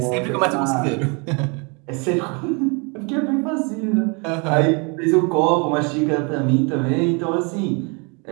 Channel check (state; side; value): quieter; left; 32.4 dB